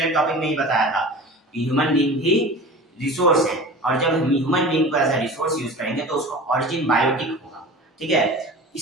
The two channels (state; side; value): normal; both; correlation 0.36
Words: टॉपिक में ही बताया था कि ह्यूमन बीइंग भी रिसोर्स है और जब हम ह्यूमन बीइंग को एज अ रिसोर्स यूज करेंगे तो उसका ऑरिजिन बायोटिक होगा। ठीक है,